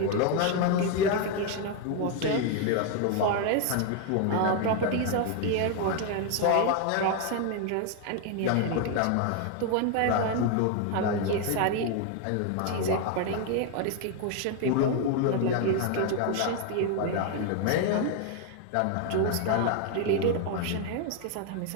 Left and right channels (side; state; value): both; different; correlation 0.01